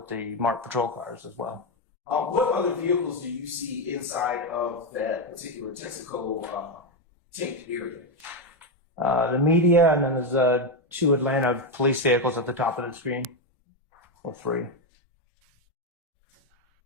the marked patrol cars as well. What other vehicles do you see inside of that particular Texaco tent area? The media, and then there's 2 Atlanta police vehicles at the top of the screen, or 3.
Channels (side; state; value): both; normal; correlation 0.07